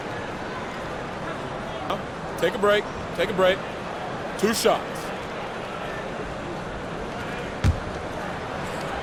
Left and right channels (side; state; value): both; identical; correlation 1.00